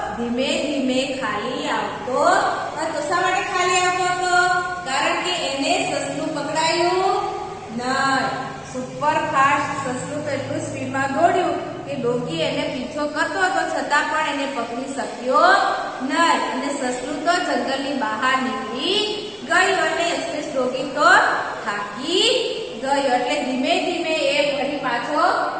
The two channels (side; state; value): both; identical; correlation 1.00